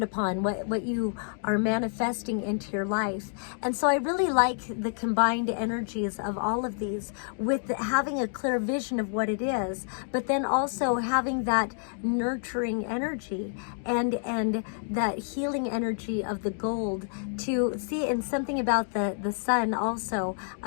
upon, what you are manifesting into your life. And so I really like the combined energies of all of these, with having a clear vision of what it is, but then also having that nurturing energy and that healing energy of the gold to see. And something about the sun also,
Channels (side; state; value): right; silent; digital silence